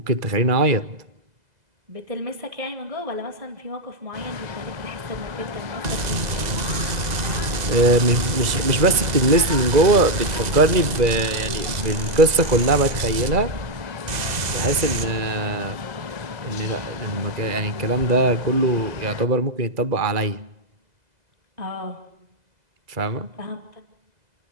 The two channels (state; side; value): late; left; 2.0 ms